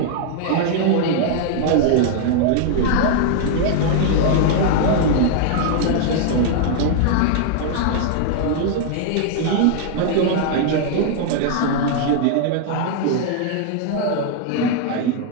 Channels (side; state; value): both; different; correlation 0.00